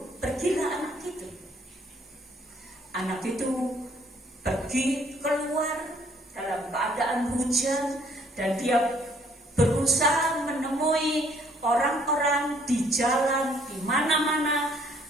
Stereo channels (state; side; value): normal; both; correlation 0.63